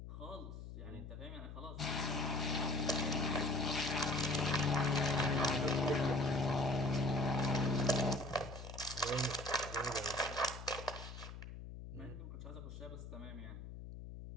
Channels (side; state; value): left; noise; hum, 11 dB below the sound